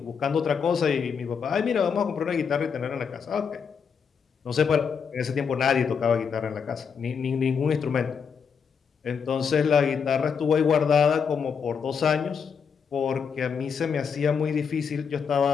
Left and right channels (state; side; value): quieter; right; 6.4 dB